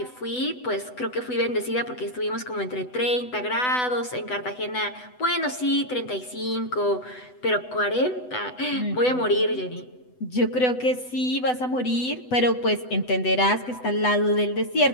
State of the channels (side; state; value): right; late; 8.0 ms